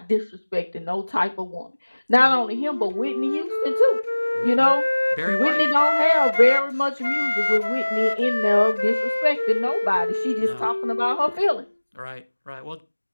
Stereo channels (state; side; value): inverted; both; correlation -1.00